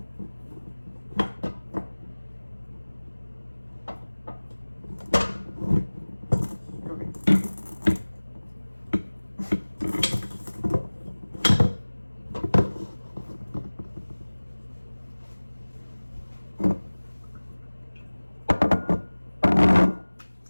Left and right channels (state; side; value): inverted; both; correlation -1.00